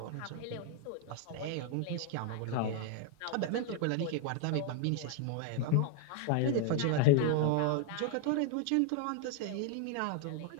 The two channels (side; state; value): both; different; correlation 0.00